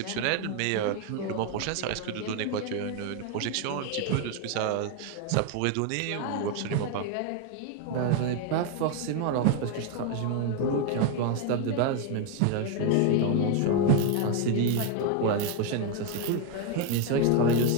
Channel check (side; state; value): both; different; correlation 0.01